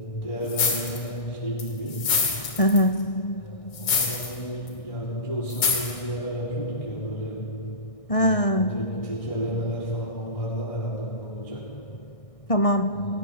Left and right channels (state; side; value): late; right; 1.6 ms